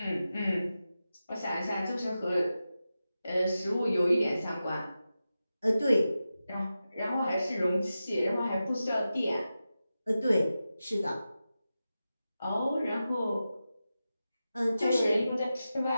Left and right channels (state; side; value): inverted; both; correlation -0.92